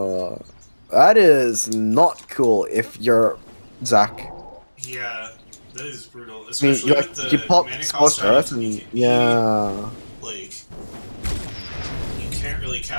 that is not cool if you're Zach. Yeah, that is brutal. I mean, Especially with the you pop mana Scorched cost Earth item, and yeah. Like, you can't really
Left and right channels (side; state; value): both; inverted; correlation -1.00